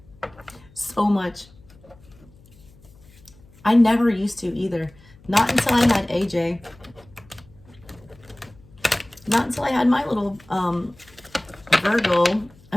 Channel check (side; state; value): left; noise; hum, 26 dB below the sound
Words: So much. I never used to either. Not until I had AJ. Not until I had my little Virgo.